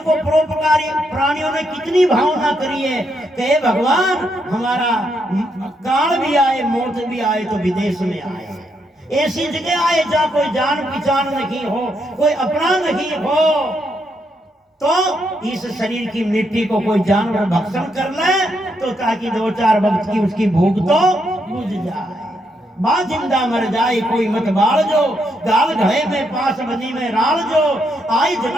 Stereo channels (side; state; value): both; normal; correlation 0.78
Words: परोपकारी प्राणियों ने कितनी भावना करी है कि भगवान हमारा काल भी आए, मौत भी आए तो विदेश में आए, ऐसी जगह आए जहाँ कोई जान पहचान नहीं हो, कोई अपना नहीं हो, तो इस शरीर की मिट्टी को कोई जानवर भक्षण कर ले तो ताकि 2-4 वक्त की उसकी भूख तो बुझ जाए। बा जिंदा मर जाए कोई मत बाल जो, गाल घड़े में पास बनी में राल जो, आई